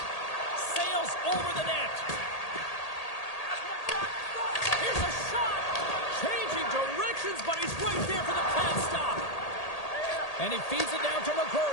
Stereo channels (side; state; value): right; late; 1.8 ms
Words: Sails over the net. Here's a shot! Changing directions, but he's right there for the pad stop. And he feeds it down to